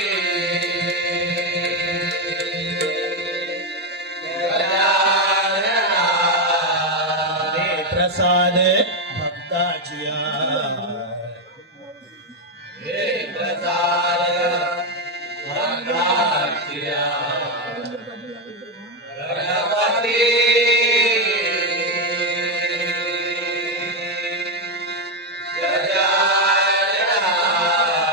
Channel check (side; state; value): both; normal; correlation 0.06